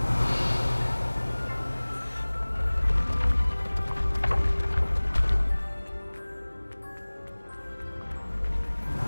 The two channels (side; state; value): both; inverted; correlation -1.00